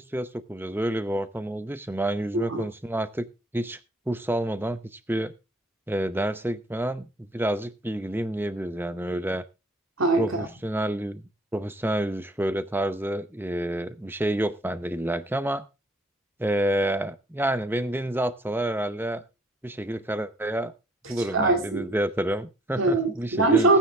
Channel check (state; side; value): normal; both; correlation 0.55